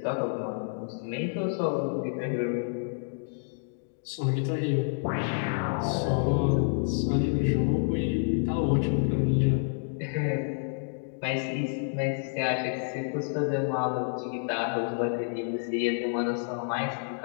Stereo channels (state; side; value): silent; right; digital silence